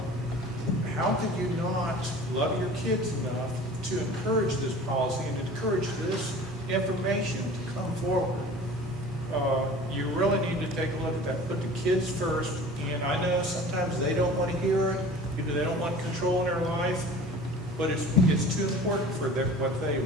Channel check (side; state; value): both; normal; correlation 0.42